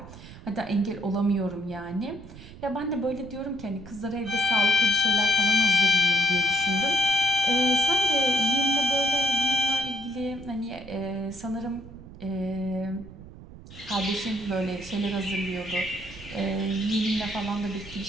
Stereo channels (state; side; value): noise; right; rumble, 17 dB below the sound